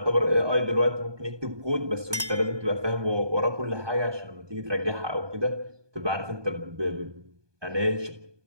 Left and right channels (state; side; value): late; left; 1.2 ms